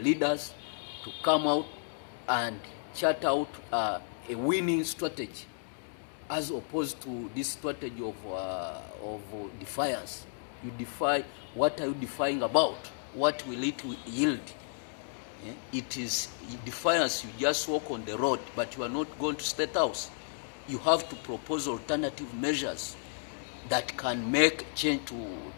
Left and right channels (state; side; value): silent; right; digital silence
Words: leaders to come out and chart out a winning strategy, as opposed to this strategy of defiance. You defy, what are you defying about? What will it yield? It is defiance. You just walk on the road, but you are not going to State House. You have to propose alternative measures that can make change to